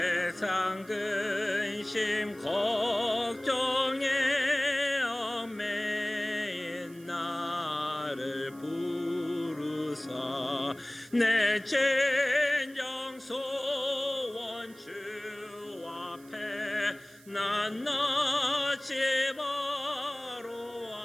근심 걱정에 얽매인 나를 부르사 내 진정 소원 주 난 나지 바로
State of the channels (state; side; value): noise; right; hiss, 24 dB below the sound